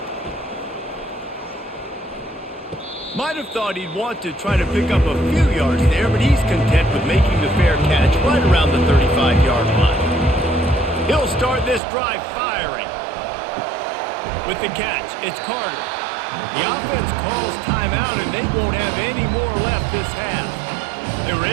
Might have thought he'd want to try to pick up a few yards there, but he's content with making the fair catch right around the 35-yard line. He'll start this drive firing. With the catch, it's Carter. The offense calls timeout, and they won't have any more left this half. They were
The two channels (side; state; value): left; drops out; at 11.8 s